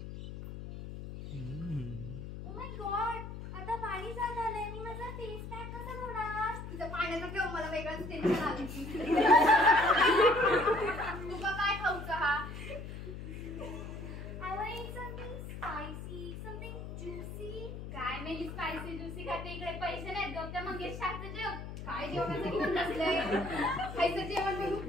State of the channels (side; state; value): left; noise; hum, 9 dB below the sound